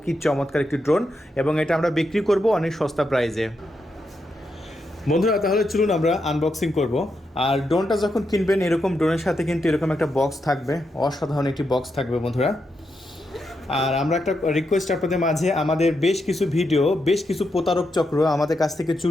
কি চমৎকার একটি ড্রোন, এবং এটা আমরা বিক্রি করব অনেক সস্তা প্রাইসে। বন্ধুরা, তাহলে চলুন আমরা আনবক্সিং করব। আর ড্রোনটা যখন কিনবেন, এরকম ড্রোনের সাথে কিন্তু এরকম একটা বক্স থাকবে, অসাধারণ একটি বক্স থাকবে বন্ধুরা। আর আমরা একটা রিকোয়েস্ট আপনাদের মাঝে, আমাদের বেশ কিছু ভিডিও বেশ কিছু প্রতারক চক্র আমাদের কাছ থেকে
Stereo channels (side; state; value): both; normal; correlation 0.84